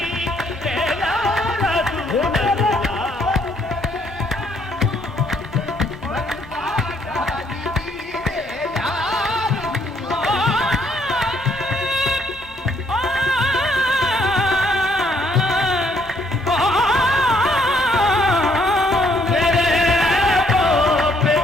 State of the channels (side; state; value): both; normal; correlation 0.68